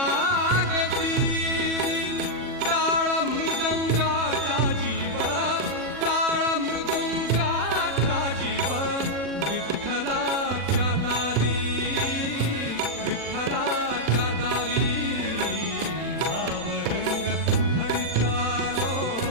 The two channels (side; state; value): left; late; 40 ms